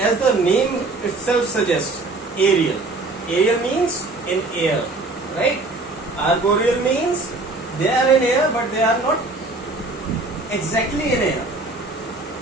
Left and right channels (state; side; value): quieter; left; 3.2 dB